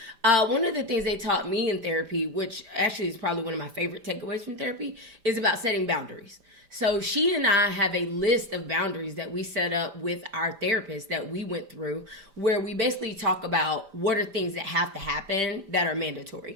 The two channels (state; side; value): late; left; 5.0 ms